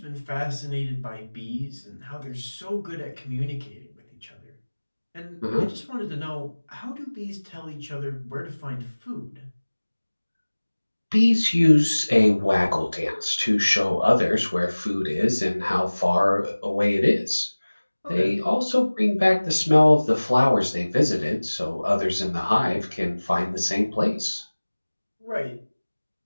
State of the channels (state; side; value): inverted; both; correlation -1.00